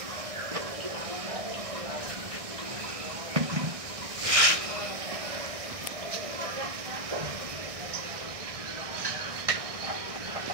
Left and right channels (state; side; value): late; left; 1.6 ms